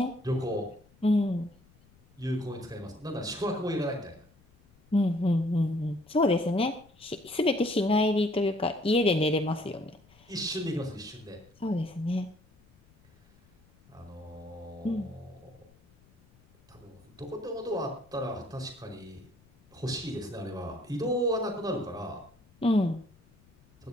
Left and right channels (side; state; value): left; noise; rumble, 29 dB below the sound